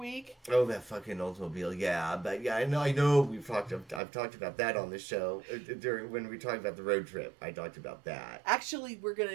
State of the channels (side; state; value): left; drops out; at 4.0 s